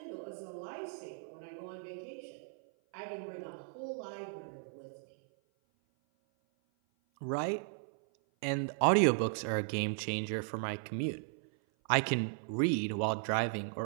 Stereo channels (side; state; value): left; silent; 54 dB below the other